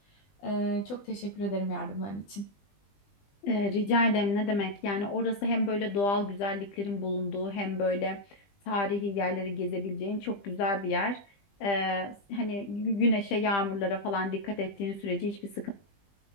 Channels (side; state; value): right; late; 20 ms